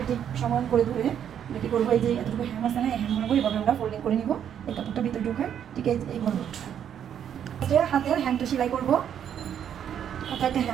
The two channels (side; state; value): left; quieter; 9.2 dB